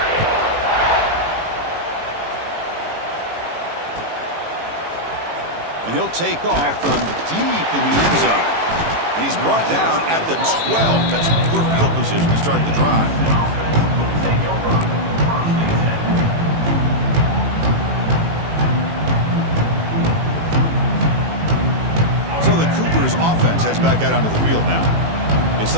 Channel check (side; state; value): left; late; 18 ms